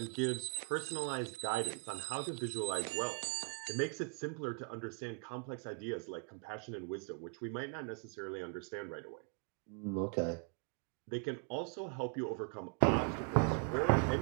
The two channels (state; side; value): quieter; left; 39.3 dB